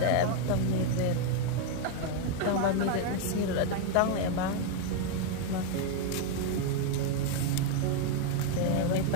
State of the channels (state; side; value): different; both; correlation 0.01